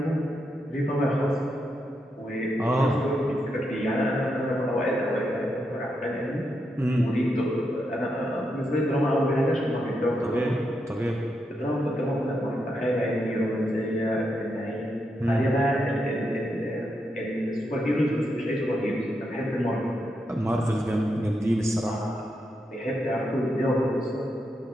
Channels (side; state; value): both; normal; correlation 0.83